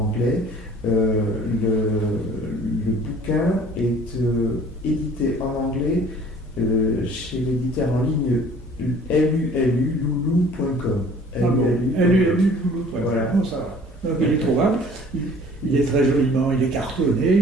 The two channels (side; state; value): both; normal; correlation 0.51